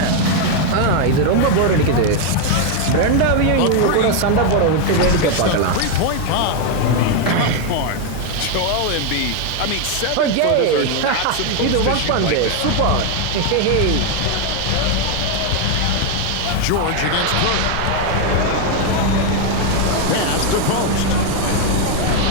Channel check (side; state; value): both; different; correlation 0.01